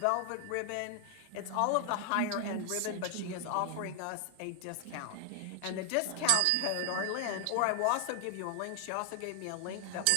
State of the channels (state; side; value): different; both; correlation 0.00